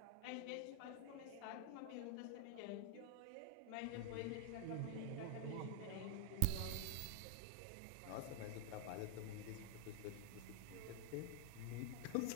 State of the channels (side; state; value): both; different; correlation 0.00